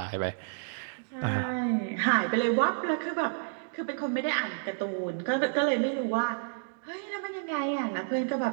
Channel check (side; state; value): left; silent; digital silence